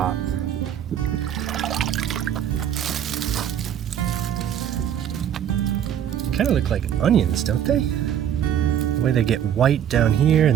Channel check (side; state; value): left; quieter; 9.8 dB